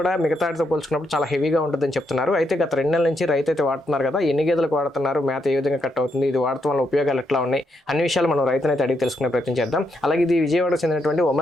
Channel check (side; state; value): both; normal; correlation 0.79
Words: కూడా మిగతాటితో పోల్చుకున్నప్పుడు చాలా హెవీగా ఉంటుందని చెప్తున్నారు. అయితే గత 2 నెలల నుంచి రైతు అయితే వాడుతున్నారు కదా, ఎన్ని గేదెలకు వాడుతున్నారు, మేత ఏ విధంగా కట్ అవుతుంది, ఇది వాడటం వల్ల ఉపయోగాలు ఎట్లా ఉన్నాయి, అన్ని విషయాలు మనం రైతుని అయితే అడిగి తెలుసుకునే ప్రయత్నం చేద్దాం. అలాగే ఇది విజయవాడకు చెందినటువంటి